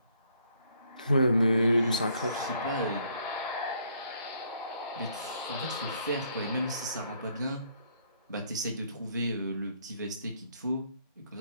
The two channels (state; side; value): inverted; both; correlation -0.68